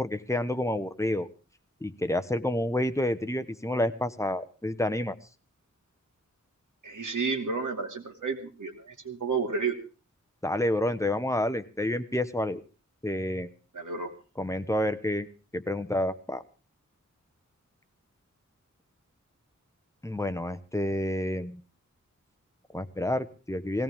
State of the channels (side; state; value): both; normal; correlation 0.64